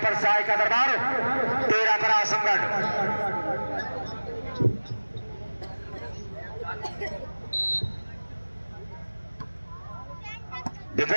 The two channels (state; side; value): inverted; both; correlation -1.00